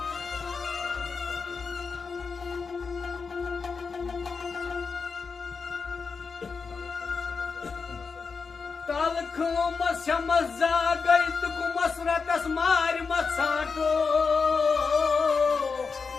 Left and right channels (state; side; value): quieter; right; 5.0 dB